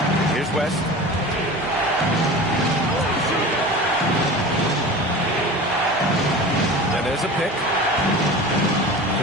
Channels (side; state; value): both; normal; correlation 0.35